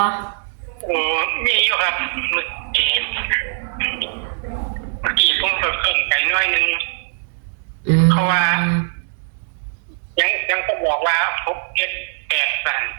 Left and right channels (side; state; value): left; silent; digital silence